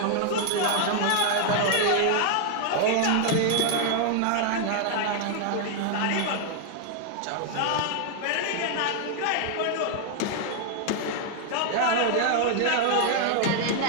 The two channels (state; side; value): different; both; correlation 0.00